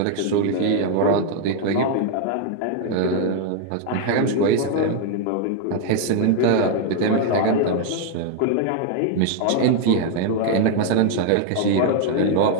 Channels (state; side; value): different; both; correlation 0.00